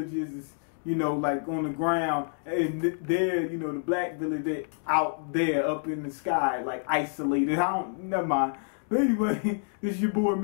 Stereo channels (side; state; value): right; silent; digital silence